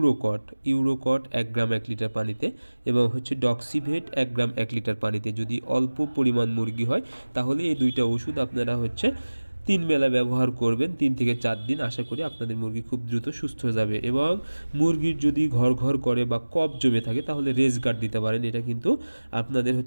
1 গ্রাম 1 লিটার পানিতে, এবং ডক্সিভেট 1 গ্রাম 1 লিটার পানিতে। যদি অল্প পরিমাণ মুরগি হয় তাহলে এই দুইটা ওষুধ আপনারা 3 বেলা ব্যবহার করবেন, 3 থেকে 4 দিন। আশা করি আপনাদের মুরগি খুব দ্রুত সুস্থ হয়ে যাবে। এবং মুরগির যদি ঘর ঘর করে বা কফ জমে থাকে তাহলে রেজ গার্ড দিতে পারেন। এটা কিন্তু আপনাদের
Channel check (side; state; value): both; inverted; correlation -1.00